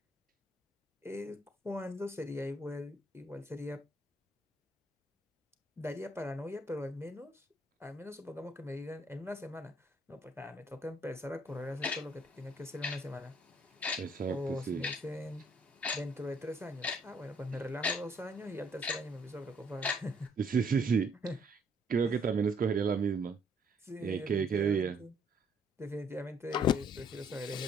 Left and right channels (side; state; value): both; normal; correlation 0.65